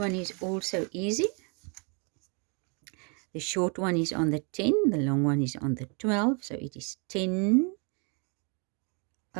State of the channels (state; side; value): quieter; left; 35.8 dB